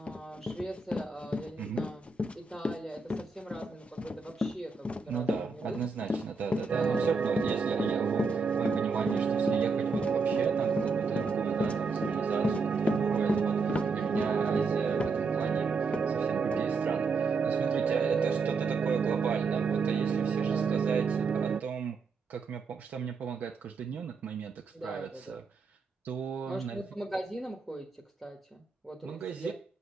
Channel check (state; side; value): quieter; left; 4.5 dB